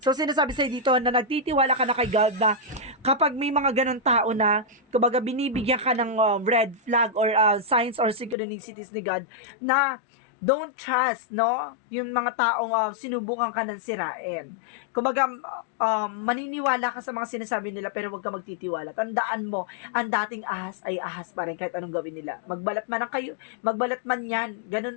So sinasabi sa'yo dito na nagtitiwala ka na kay God na kapag may mga ganon tao na, kumbaga binibigyan ka ng red flag or signs or synchronicities ni God na don't trust, no? Yung mga taong sinubukan ka ng sirain. Kumbaga, maniniwala ka sa mga sinasabi nila pero huwag ka magtitiwala. Tandaan mo, ang dating ahas ay ahas pa rin kahit anong gawin nila. Magbalat man yan,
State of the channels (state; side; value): drops out; right; at 8.3 s